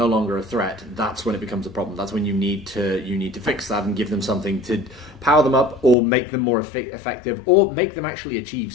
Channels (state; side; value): drops out; right; at 6.0 s